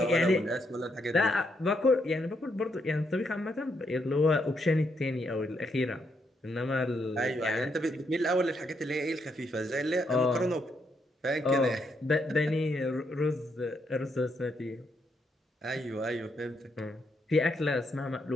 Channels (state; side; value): normal; both; correlation 0.77